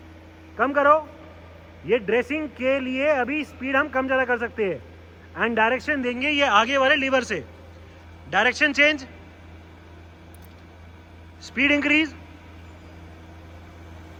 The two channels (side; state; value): both; identical; correlation 1.00